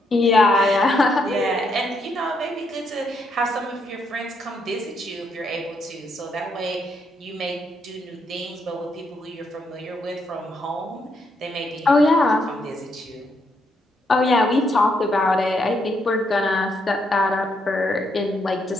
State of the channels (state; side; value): normal; both; correlation 0.76